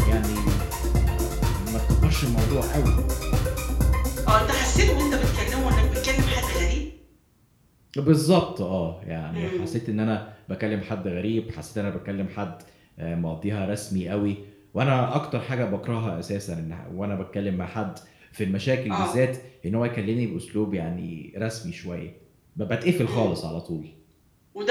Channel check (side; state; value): both; identical; correlation 1.00